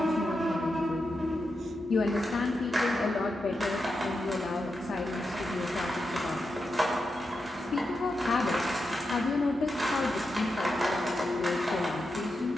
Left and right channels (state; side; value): normal; both; correlation 0.87